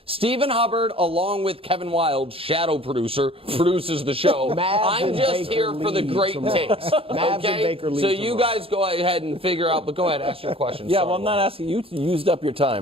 Stephen Hubbard, along with Kevin Wild, shadow producer, produces the show. I'm just Baker here for the lead great tomorrow. takes. Mavs and Okay? Baker lead So you tomorrow. guys go ahead and figure out, but go ahead, ask your questions. Yeah, Sorry, well, I'm not Wild. asking you. You used up your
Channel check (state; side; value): late; left; 0.27 ms